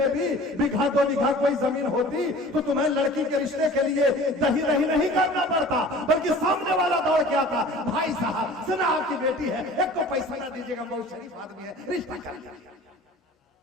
भी बीघा 2 बीघा कोई जमीन होती तो तुम्हें लड़की के रिश्ते के लिए दही दही नहीं करना पड़ता, बल्कि सामने वाला दौड़ के आता, भाई साहब सुना आपकी बेटी है, एक तो पैसा ना दीजिएगा, बहुत शरीफ आदमी है, रिश्ता कर दिया।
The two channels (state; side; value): normal; both; correlation 0.44